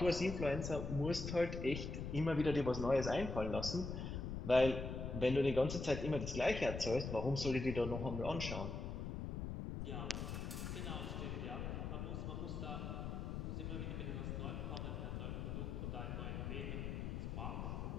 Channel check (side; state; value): left; noise; rumble, 4 dB below the sound